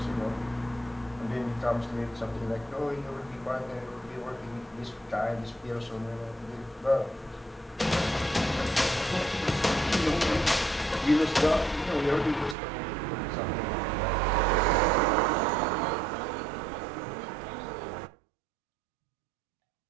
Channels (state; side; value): drops out; left; at 12.6 s